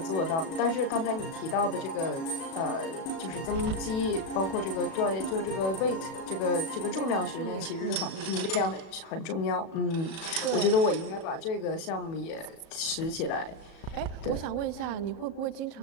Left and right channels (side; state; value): right; late; 37 ms